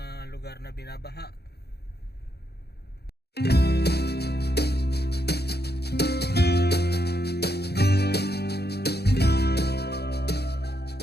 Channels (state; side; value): late; right; 0.47 ms